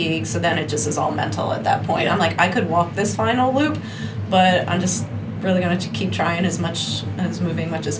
So then it just is all mental at that point. I'm like, I could walk this final loop, but I'm just really going to keep trying as moving much as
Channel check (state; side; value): identical; both; correlation 1.00